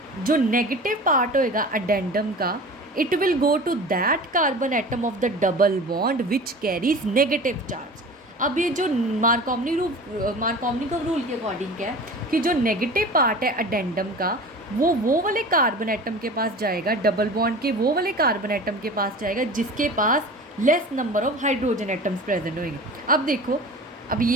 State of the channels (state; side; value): normal; both; correlation 0.37